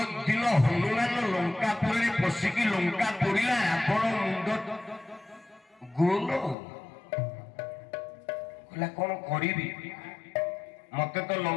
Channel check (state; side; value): drops out; right; at 6.6 s